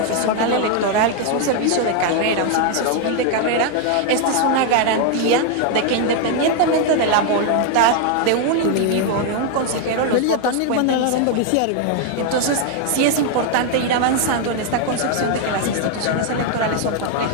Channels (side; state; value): both; different; correlation 0.00